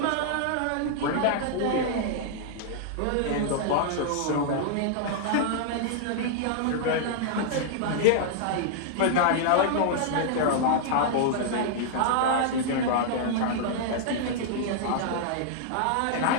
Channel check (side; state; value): both; different; correlation -0.01